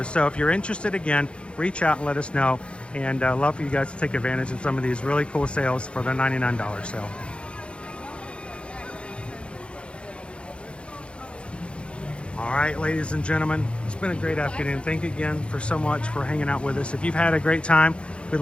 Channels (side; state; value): right; late; 0.058 ms